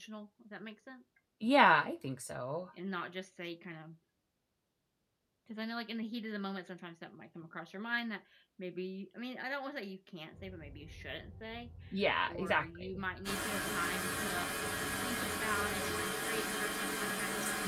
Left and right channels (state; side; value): identical; both; correlation 1.00